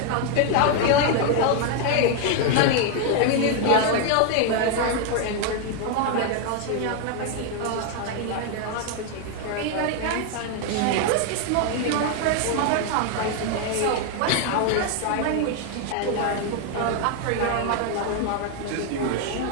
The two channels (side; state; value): both; different; correlation 0.01